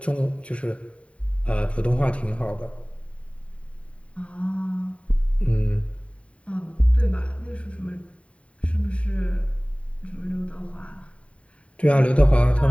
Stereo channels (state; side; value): late; right; 0.063 ms